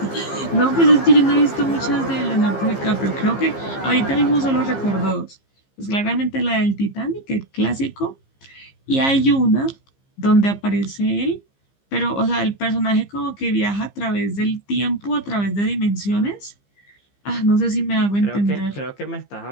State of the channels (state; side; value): late; right; 15 ms